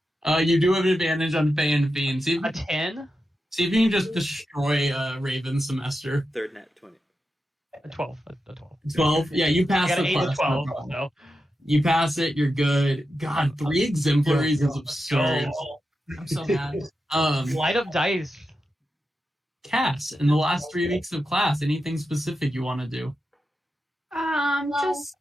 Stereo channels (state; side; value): normal; both; correlation 0.89